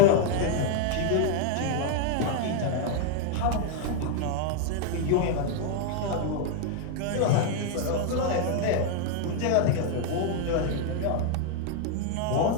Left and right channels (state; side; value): different; both; correlation 0.00